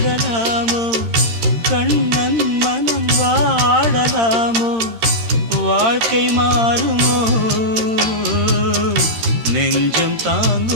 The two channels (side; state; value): left; late; 13 ms